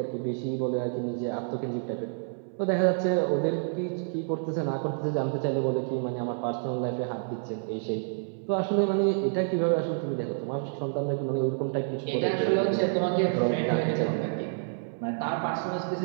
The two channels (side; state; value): left; silent; 59 dB below the other